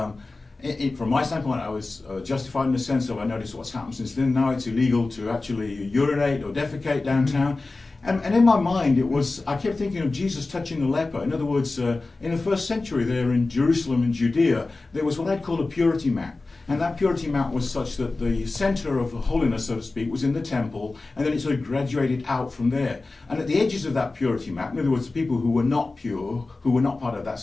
my standpoint, I was justified in the sense of I noticed what's happened since then. Now it's illegal to actually urinate or defecate downtown. And in my mind, I kept thinking of Jesus touching the leper. In other words, in the first century there in Jerusalem and Judea, there was what I'd call a purity map. And that purity map was such that the center of holiness, so to speak, was in the temple, and then it sort of graduated out from there. And at the edges of that purity map, in other words, the people who were not pure, who were not part of that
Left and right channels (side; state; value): right; quieter; 3.4 dB